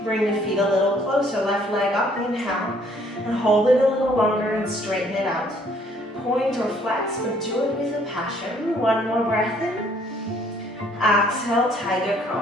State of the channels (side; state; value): both; normal; correlation 0.62